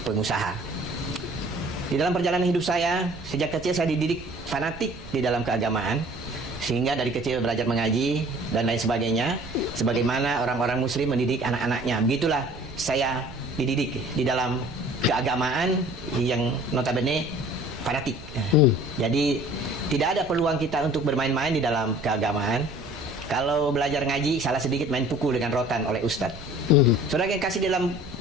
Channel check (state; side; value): noise; right; rumble, 16 dB below the sound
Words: Di dalam perjalanan hidup saya, sejak kecil saya dididik fanatik di dalam keagamaan. Sehingga dari kecil belajar mengaji dan lain sebagainya. Sebagaimana orang-orang muslim mendidik anak-anaknya. Begitulah saya dididik di dalam keagamaan yang notabene fanatik. Jadi tidak ada peluang kita untuk bermain-main di dalam keagamaan. Kalau belajar ngaji, salah sedikit main pukul dengan rotan oleh ustadz. Saudara yang kasih, dalam